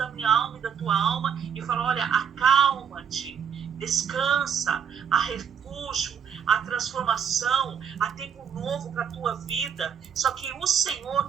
minha alma e da tua alma e falar, olha, acalma-te, descansa, há refúgio, há transformação, há tempo novo para a tua vida. Só que o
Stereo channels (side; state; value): left; quieter; 7.7 dB